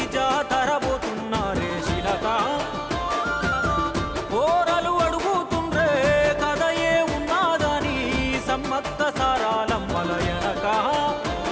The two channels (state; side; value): identical; both; correlation 1.00